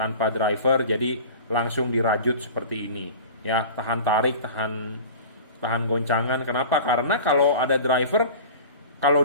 driver jadi langsung dirajut seperti ini ya, tahan tarik, tahan goncangan. Kenapa? Karena kalau ada driver, kalau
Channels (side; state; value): both; inverted; correlation -0.37